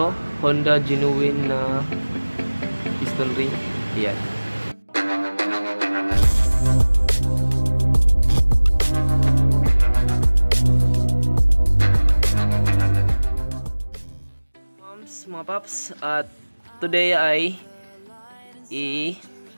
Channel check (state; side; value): inverted; both; correlation -1.00